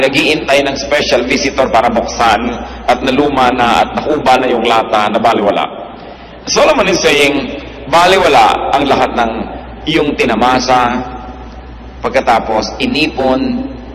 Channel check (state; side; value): identical; both; correlation 1.00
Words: ng special visitor para buksan, at naluma na at nakuba na yung lata na baliwala. Solomon is saying, baliwala ang lahat ng iyong tinamasa, pagkatapos inipon,